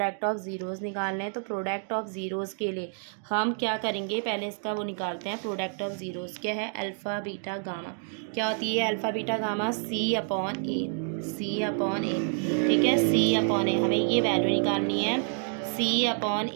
ऑफ ज़ीरोज़ निकालने हैं। तो प्रोडक्ट ऑफ ज़ीरोज़ के लिए हम क्या करेंगे, पहले इसका वो निकालते हैं, प्रोडक्ट ऑफ ज़ीरोज़ क्या है, अल्फ़ा बीटा गामा। क्या होती है अल्फ़ा बीटा गामा, सी अपॉन ए। ठीक है, सी अपॉन ए, हमें ये वैल्यू निकालनी है, सी अपॉन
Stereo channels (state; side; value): silent; left; 59 dB below the other